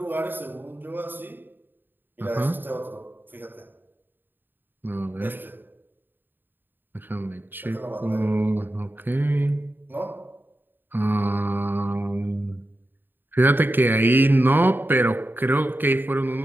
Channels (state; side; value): late; left; 0.094 ms